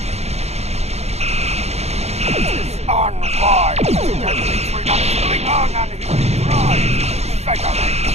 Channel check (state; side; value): late; left; 0.31 ms